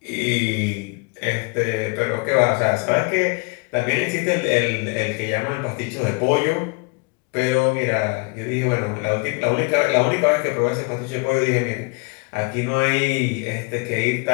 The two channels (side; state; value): right; quieter; 31.7 dB